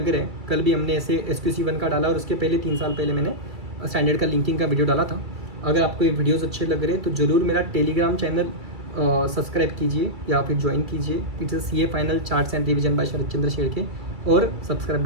रहे हैं, कल भी हमने ऐसे SQC1 का डाला और उसके पहले 3 साल पहले मैंने स्टैंडर्ड का लिंकिंग का वीडियो डाला था। अगर आपको ये वीडियोस अच्छे लग रहे हैं तो ज़रूर मेरा टेलीग्राम चैनल सब्सक्राइब कीजिए या फिर ज्वाइन कीजिए। It's CA final charts and revision by Sharad Chandra Shedke, और सब्सक्राइब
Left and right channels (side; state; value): left; late; 2.3 ms